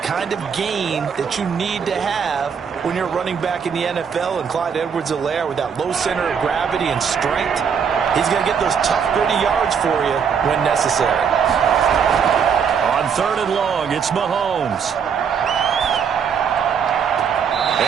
kind of gain that you need to have when you're running back in the NFL. And Clyde Edwards-Helaire, with that low center of gravity and strength, he's going to get those tough, gritty yards for you when necessary. On 3rd and long, it's Mahomes.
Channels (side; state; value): left; quieter; 6.9 dB